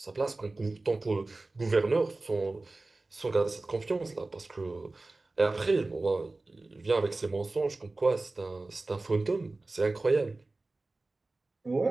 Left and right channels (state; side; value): quieter; left; 3.2 dB